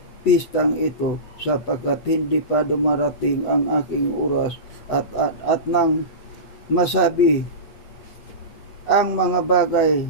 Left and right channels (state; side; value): late; right; 8.1 ms